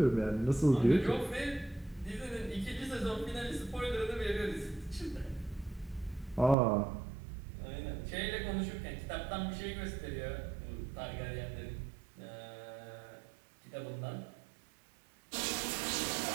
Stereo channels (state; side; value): drops out; left; at 6.6 s